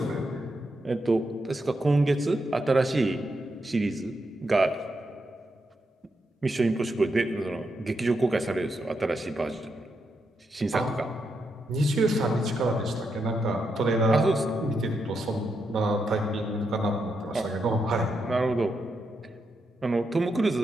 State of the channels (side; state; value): both; normal; correlation 0.83